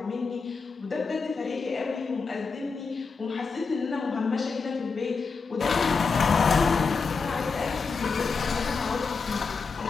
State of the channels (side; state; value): right; quieter; 4.8 dB